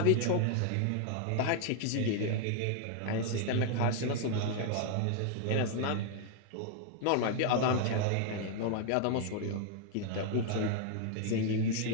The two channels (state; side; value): different; both; correlation 0.00